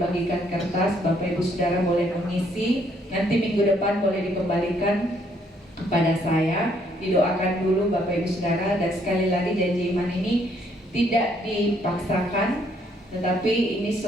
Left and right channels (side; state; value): both; normal; correlation 0.68